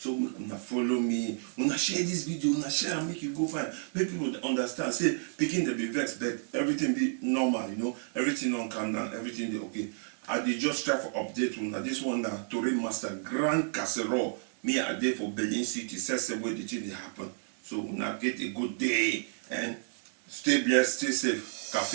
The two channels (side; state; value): left; silent; digital silence